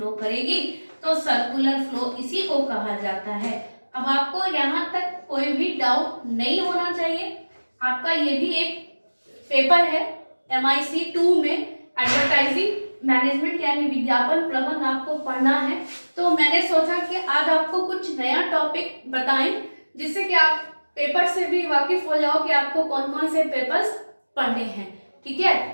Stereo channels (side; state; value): both; inverted; correlation -1.00